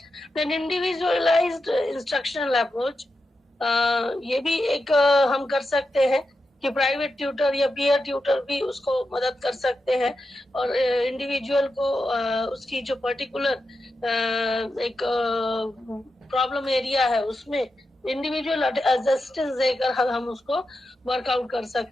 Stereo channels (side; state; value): both; normal; correlation 0.89